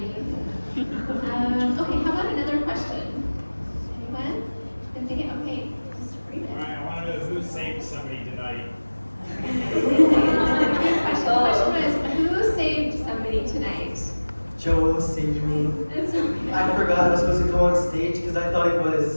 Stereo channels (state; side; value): inverted; both; correlation -1.00